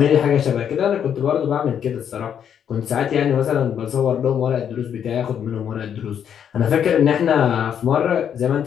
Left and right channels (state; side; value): quieter; right; 8.6 dB